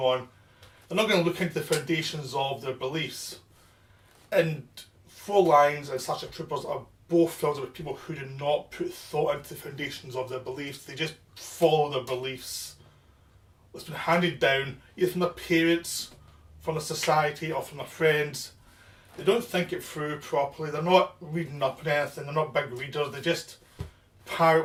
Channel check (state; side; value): identical; both; correlation 1.00